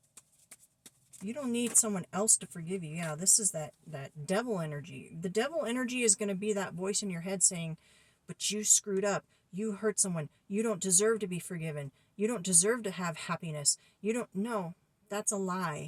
You don't need someone else to forgive you. Yeah, this is that devil energy. The devil energy is going to be that voice in your head saying, but you screwed up. You hurt someone. You don't deserve to be forgiven. You don't deserve to have happiness. You don't know. That's a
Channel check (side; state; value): both; identical; correlation 1.00